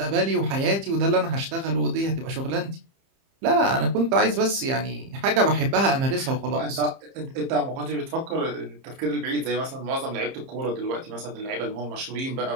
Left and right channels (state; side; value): late; left; 30 ms